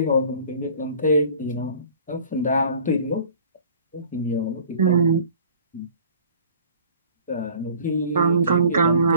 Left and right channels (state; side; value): inverted; both; correlation -0.50